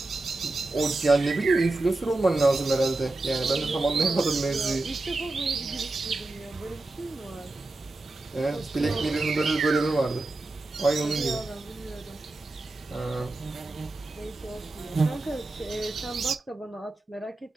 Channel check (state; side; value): quieter; left; 3.0 dB